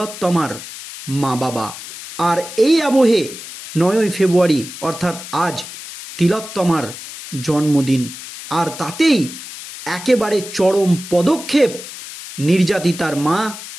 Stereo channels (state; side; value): noise; left; hiss, 12 dB below the sound